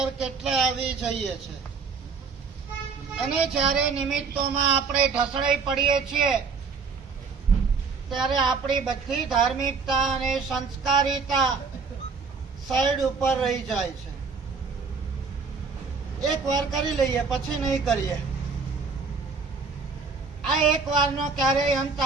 કેટલા આવી જઈએ છીએ. અને જ્યારે નિમિત્તોમાં આપણે ઢસડાઈ પડીએ છીએ ત્યારે આપણી બધી ધાર્મિકતા અને સંસ્કારિતા સાઈડ ઉપર રહી જાય છે. એક વાર કરી લઈએ, પછી નહીં કરીએ. આ એક વારનો ક્યારેય અંત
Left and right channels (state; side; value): quieter; left; 5.0 dB